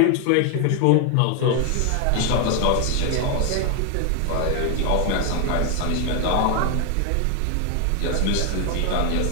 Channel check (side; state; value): both; different; correlation 0.01